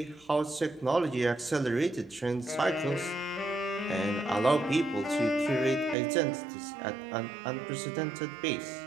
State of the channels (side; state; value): left; drops out; at 6.0 s